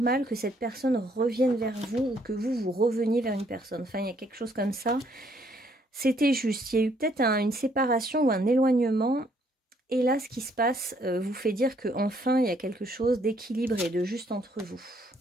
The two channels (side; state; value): both; normal; correlation 0.67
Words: que cette personne revienne vers vous, ou que vous reveniez vers une personne. Enfin, il y a quelque chose comme ça. C'était juste, il y a eu peut-être une séparation ou un éloignement. Et là, ce qui se passe vous fait dire qu'enfin, il y a quelque chose d'équilibré, de juste entre vous.